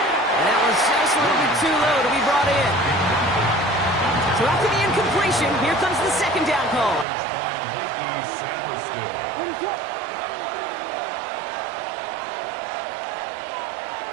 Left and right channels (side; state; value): left; drops out; at 7.1 s